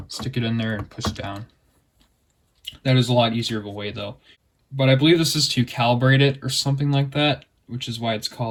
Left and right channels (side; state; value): both; identical; correlation 1.00